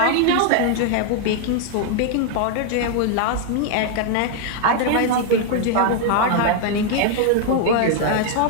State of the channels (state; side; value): different; both; correlation 0.00